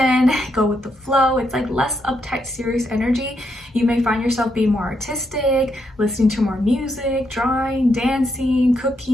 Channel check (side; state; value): both; normal; correlation 0.79